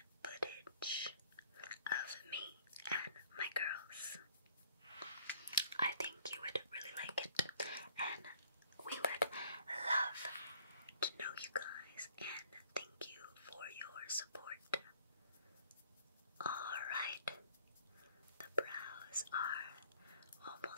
footage of me and my girls. I think you would really like it, and we would love to know you guys, and thank you for your support. Alright, the brows are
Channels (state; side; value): inverted; both; correlation -0.56